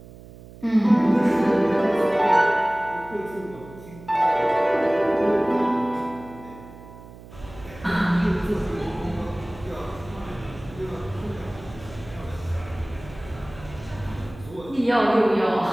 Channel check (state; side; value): noise; right; hum, 18 dB below the sound